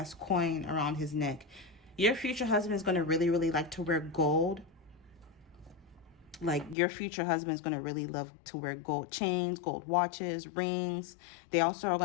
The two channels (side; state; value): right; drops out; at 6.8 s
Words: coin around his neck. Your future husband is going to really, really like to wear gold. Like your future husband is going to really love to wear gold chains, gold watches, rings. They also are